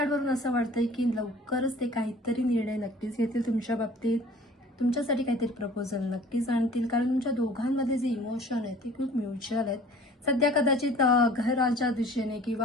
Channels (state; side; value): normal; both; correlation 0.48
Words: असं वाटतंय की लवकरच ते काहीतरी निर्णय नक्कीच घेतील तुमच्या बाबतीत, तुमच्यासाठी काहीतरी प्रपोजल नक्कीच आणतील. कारण तुमच्या दोघांमध्ये जे इमोशन आहेत ते खूप म्युच्युअल आहेत. सध्या कदाचित घराच्या दिशेने